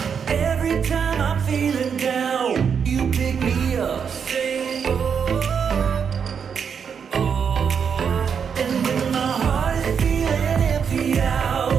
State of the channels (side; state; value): left; quieter; 6.9 dB